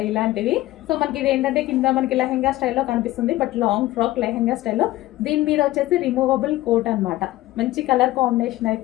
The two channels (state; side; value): quieter; right; 16.8 dB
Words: ఇలాంటివి. సో మనకి ఇది ఏంటంటే కింద మనకి లెహెంగా స్టైల్లో కనిపిస్తుంది, బట్ లాంగ్ ఫ్రాక్ లెహెంగా స్టైల్లో. దీని మీద వచ్చేసి రిమూవబుల్ కోట్ అన్నమాట. మంచి కలర్ కాంబినేషన్